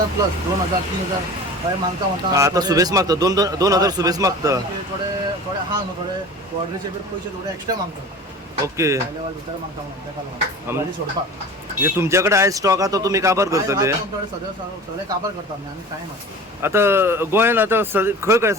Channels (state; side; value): normal; both; correlation 0.38